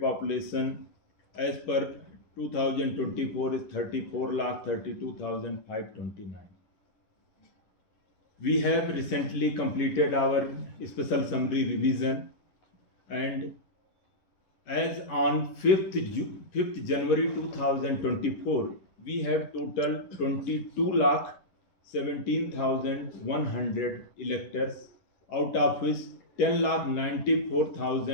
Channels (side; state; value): right; late; 10 ms